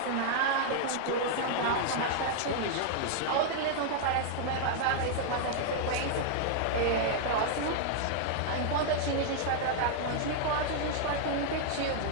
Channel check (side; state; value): both; different; correlation -0.01